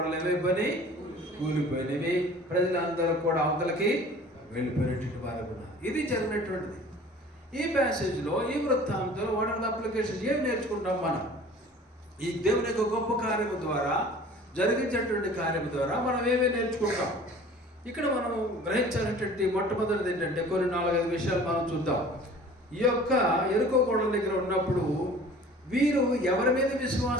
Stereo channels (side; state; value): both; normal; correlation 0.46